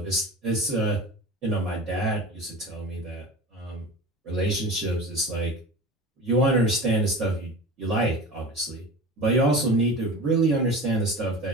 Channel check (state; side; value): normal; both; correlation 0.33